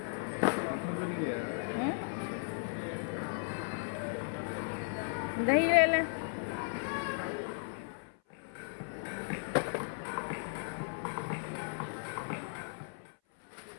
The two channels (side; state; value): right; silent; 54 dB below the other